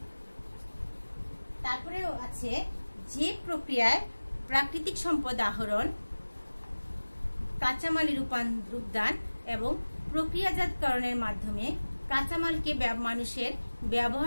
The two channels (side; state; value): both; inverted; correlation -1.00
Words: তারপরেও আছে যে প্রক্রিয়ায় প্রাকৃতিক সম্পদ আহরণ, কাঁচামালের রূপদান এবং প্রক্রিয়াজাতকরণের মাধ্যমে কাঁচামালকে মানুষের